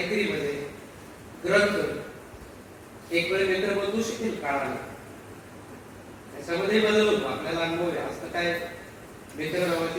ग्रंथ एक वेळ मित्र बदलू शकेल काळाने, त्याच्यामध्ये बदल होतो, आपल्याला अनुभव आहे. असं काय मित्र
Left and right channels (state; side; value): identical; both; correlation 1.00